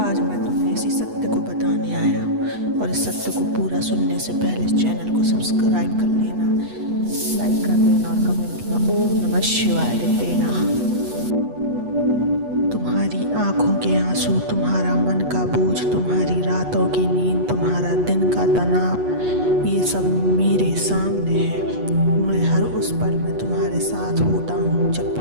मैं तुम्हें इसी सत्य को बताने आया हूँ, और इस सत्य को पूरा सुनने से पहले इस चैनल को सब्सक्राइब कर लेना, लाइक कर देना और कमेंट में ओम नमः शिवाय लिख देना। तुम्हारी आँखों के आंसू, तुम्हारा मन का बोझ, तुम्हारी रातों की नींद, तुम्हारा दिन का तनाव, ये सब मेरे सामने है। मैं हर उस पल में तुम्हारे साथ होता हूँ जब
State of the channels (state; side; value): late; left; 8.2 ms